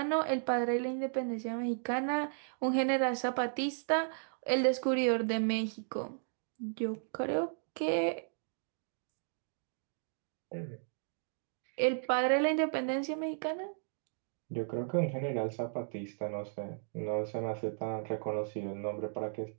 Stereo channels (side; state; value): left; silent; digital silence